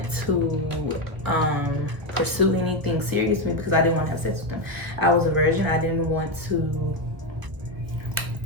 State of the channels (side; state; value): left; late; 1.1 ms